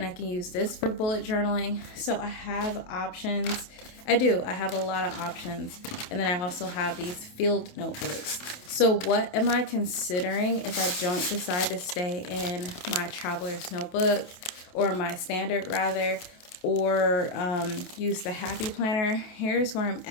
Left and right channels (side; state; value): right; late; 28 ms